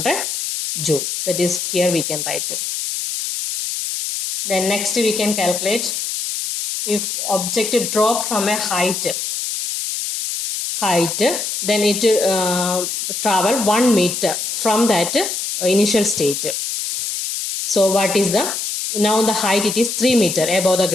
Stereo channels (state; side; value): noise; left; hiss, 3 dB below the sound